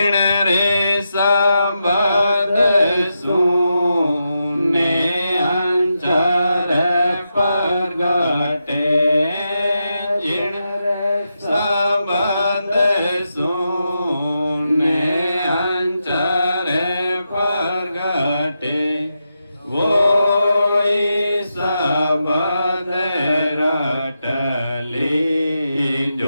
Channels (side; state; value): both; inverted; correlation -0.86